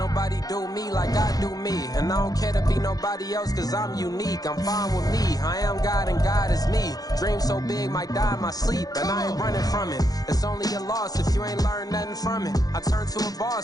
do me like I do me. And I don't care to be nobody else cause I'm unique. I'm fine with me. I am God and God is me. Dream so big might die in my sleep. And I ain't running from it. It's only a loss if you ain't learned nothing from it. I turned to a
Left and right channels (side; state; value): right; late; 0.18 ms